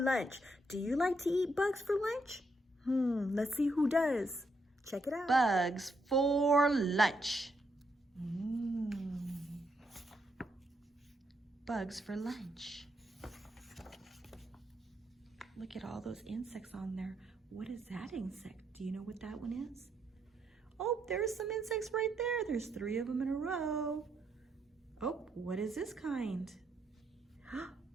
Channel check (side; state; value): both; normal; correlation 0.77